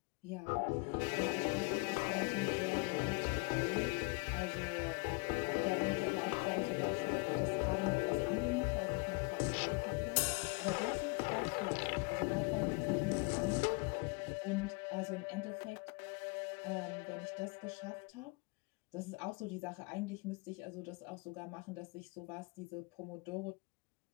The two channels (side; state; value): right; quieter; 30.1 dB